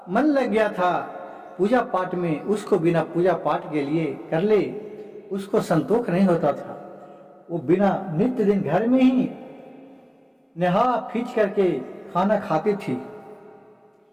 मन लग गया था पूजा पाठ में। उसको बिना पूजा पाठ के लिए कर ले, उसको संतोष नहीं होता था। वो बिना नित्य दिन घर में ही नहा फींच करके खाना खाती थी।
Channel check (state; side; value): identical; both; correlation 1.00